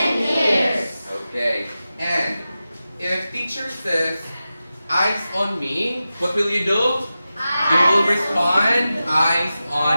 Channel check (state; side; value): inverted; both; correlation -0.93